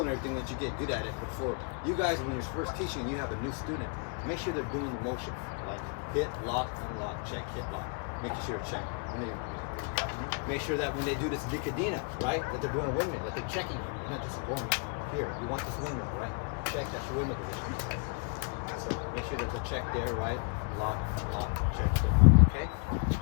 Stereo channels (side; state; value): right; quieter; 38.6 dB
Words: and everything that you get good at it. But for you guys, when you're first teaching and you have a new student, make sure they're doing the motion, like hit, lock, unlock, check, hit, lock. Making sure to check. Make sure that when they do this nicodina, right, that they're doing a windmill, that they're checking him. You're not just going here. You want this windmill, right? check, that's your windmill position, right? So make sure there's a check there, right? Lock, unlock, check, hit lock, okay?